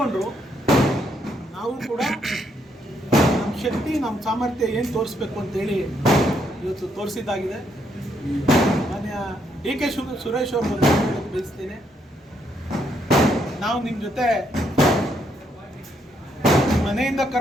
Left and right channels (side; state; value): both; normal; correlation 0.74